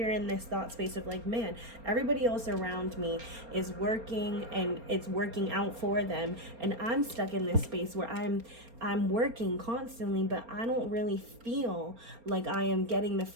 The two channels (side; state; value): left; late; 4.3 ms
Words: in this thought space of like, man, everybody else around me is working and it's working out for them, and I'm stuck in this space where I'm working constantly, but I don't really feel like I am getting the